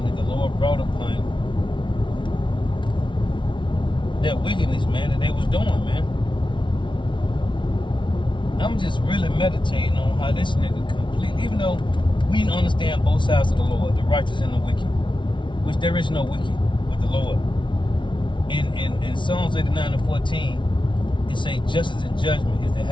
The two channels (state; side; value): late; right; 0.24 ms